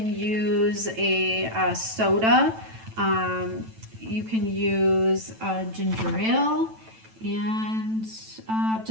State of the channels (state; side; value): late; left; 9.1 ms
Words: use a soda. You can use ginger ale, and